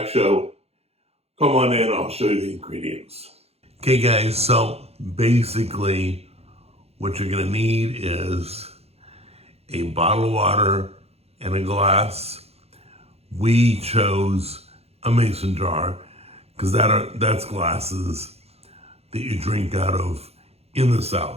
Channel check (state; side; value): late; left; 0.30 ms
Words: show. Come on in, I'll show you the ingredients. Okay guys, so basically what you're gonna need is a bottle of water and a glass. We chose a mason jar because that's glasses that you drink out of in the